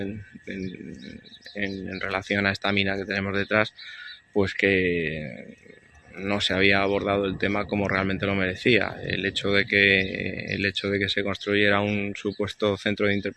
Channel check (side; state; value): both; identical; correlation 1.00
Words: relación a esta mina que tenemos detrás, pues que no se había abordado el tema como realmente lo merecía. El hecho de que se construyera un supuesto centro de